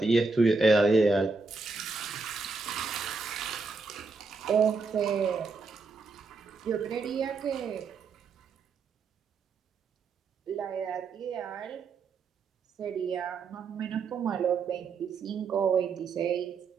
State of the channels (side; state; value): left; quieter; 4.2 dB